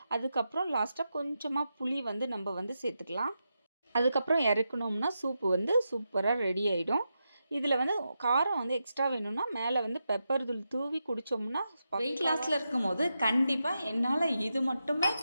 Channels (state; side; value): inverted; both; correlation -0.87